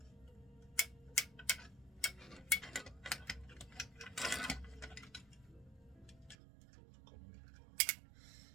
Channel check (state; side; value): drops out; left; at 6.4 s